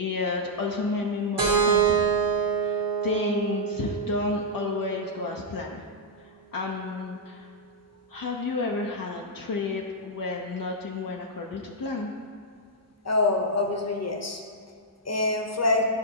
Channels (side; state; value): both; normal; correlation -0.08